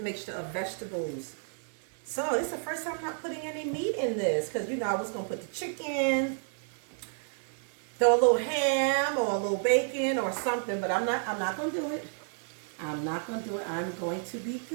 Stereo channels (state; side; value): silent; left; 57 dB below the other